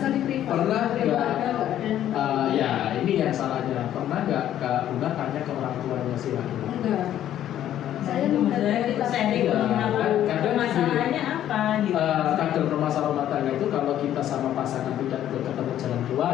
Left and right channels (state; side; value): quieter; right; 11.5 dB